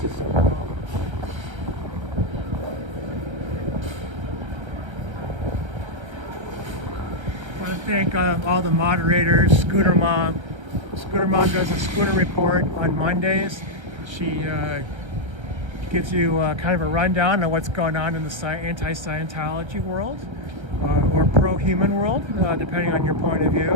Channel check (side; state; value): left; late; 1.3 ms